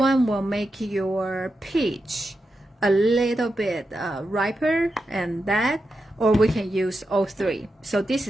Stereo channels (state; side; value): normal; both; correlation 0.88